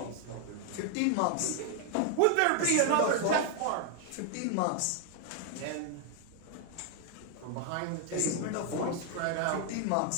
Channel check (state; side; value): different; both; correlation 0.00